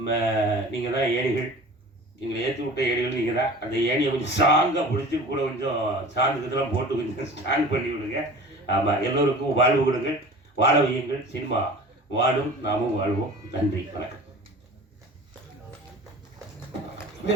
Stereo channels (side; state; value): both; normal; correlation 0.40